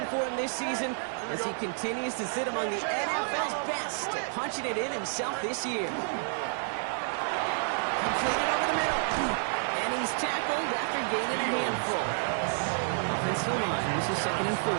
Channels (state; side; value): silent; left; digital silence